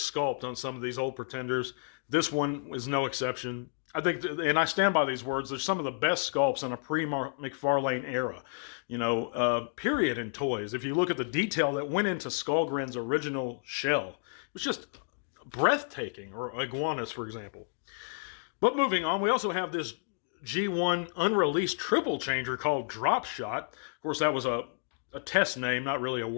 on some of these old pretenders. This one is no exception. I think, and I stand by these words, they're some of the best sculpts in a pre-McFarlane era, period, in toys. If you look at the detail that went into Skullgrin's original shell, it was just breathtaking, or Iguanus, for example. But moving on, we also have this G1 unreleased triple changer called Drop Shot. Of course, that was a test name, not really a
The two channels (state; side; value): silent; right; digital silence